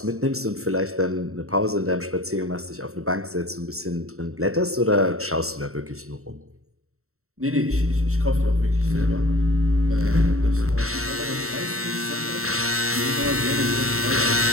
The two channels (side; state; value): left; late; 0.63 ms